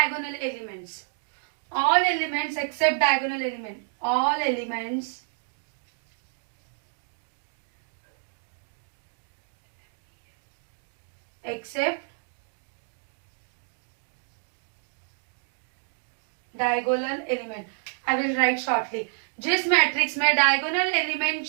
elements, all elements except diagonal element, all elements except diagonal element, I will write shortly. जिस matrix में diagonal element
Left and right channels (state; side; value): silent; left; digital silence